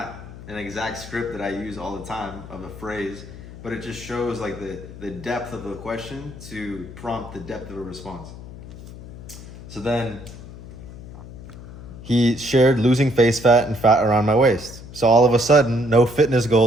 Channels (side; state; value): left; noise; hum, 14 dB below the sound